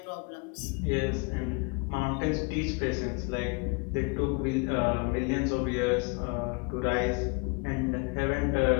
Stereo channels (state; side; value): quieter; right; 31.7 dB